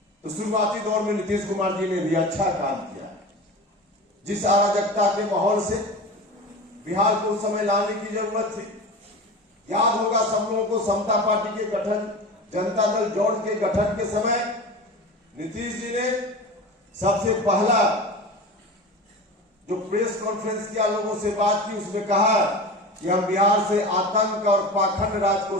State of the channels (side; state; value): both; normal; correlation 0.31